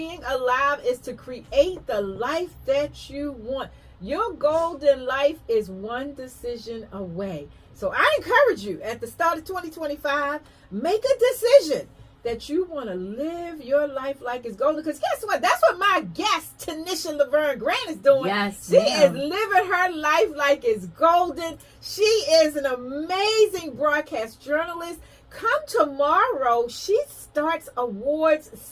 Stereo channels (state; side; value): identical; both; correlation 1.00